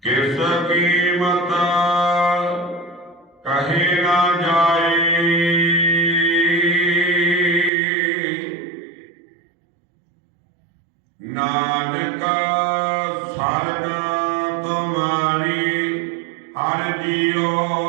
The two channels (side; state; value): left; drops out; at 7.7 s